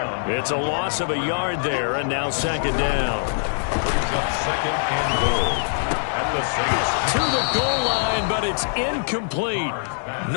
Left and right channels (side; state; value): right; silent; digital silence